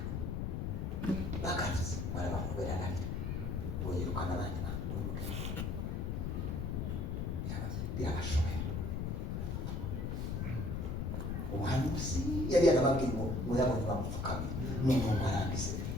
bakavuze barabakubera narira boyirukana abandi bantu birabashoboye umuhanuzi yari yarababwiye ngo murabona bamupfukamye n'umuntu arangize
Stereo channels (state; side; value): noise; left; rumble, 1 dB below the sound